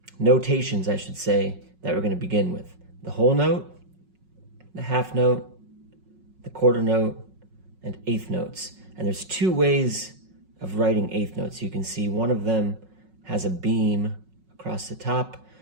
notations I should say, that we're going to begin with. The whole note, the half note, the quarter note, and eighth notes. And there's two ways of writing eighth notes. You can see one of them has a beam across the top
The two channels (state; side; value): late; left; 5.4 ms